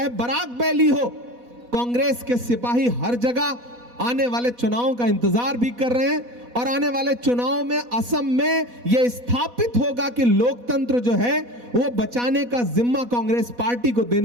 बराक वैली हो। कांग्रेस के सिपाही हर जगह आने वाले चुनावों का इंतजार भी कर रहे हैं। और आने वाले चुनाव में असम में यह स्थापित होगा कि लोकतंत्र जो है वो बचाने का जिम्मा कांग्रेस पार्टी को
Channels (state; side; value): late; left; 4.1 ms